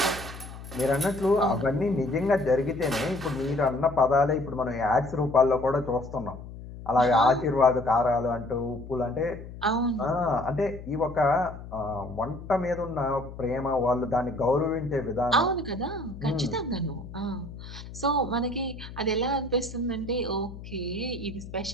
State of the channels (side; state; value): left; noise; hum, 13 dB below the sound